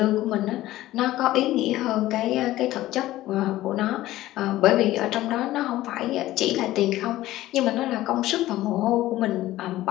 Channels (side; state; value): right; quieter; 15.7 dB